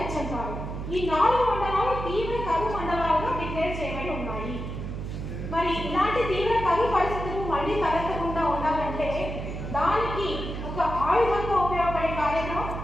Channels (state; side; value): noise; right; hum, 6 dB below the sound